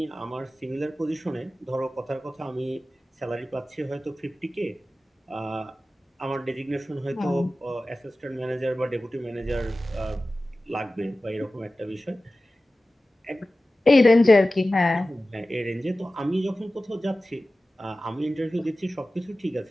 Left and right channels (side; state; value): both; normal; correlation 0.96